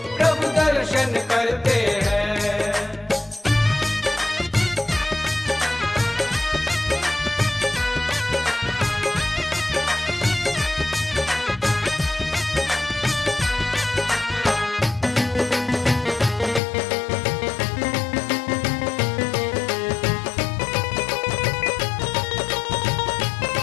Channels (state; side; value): drops out; right; at 16.6 s